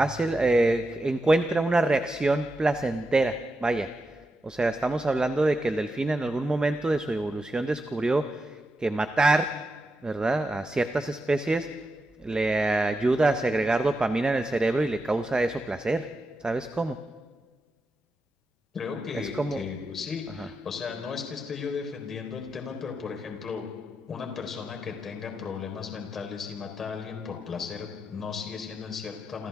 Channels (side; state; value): both; normal; correlation 0.87